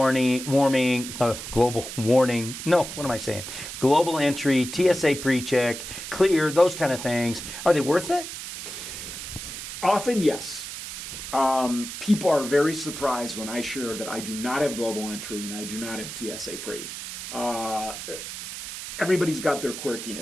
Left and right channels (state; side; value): noise; right; hiss, 8 dB below the sound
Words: global entry, TSA PreCheck, clear, those kind of things, are they worth it? Often, yes. People are very surprised when I share that I do not have global entry and I do not have TSA Pre. Everybody's got their